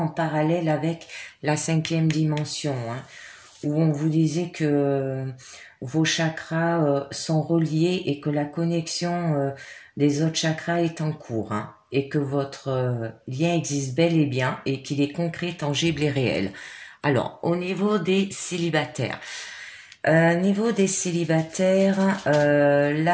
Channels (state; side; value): identical; both; correlation 1.00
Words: en parallèle avec la 5e dimension, où on vous disait que vos chakras sont reliés et que la connexion des autres chakras est en cours, et que votre lien existe bel et bien et qu'il est concret, tangible et réel. Alors, au niveau des célibataires, là,